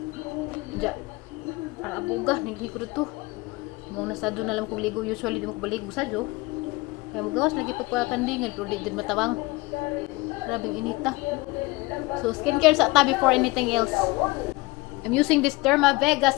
Ja. Para abuga niligo dito. Mo na sadto na lang kog ligo, usually di mo ko baligo sadto. Kaya mo gawas lagi pagpakandingan pero di din matawang. Grabing inita. So skincare sa ta before anything else. I'm using this Derma Vega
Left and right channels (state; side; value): quieter; right; 22.4 dB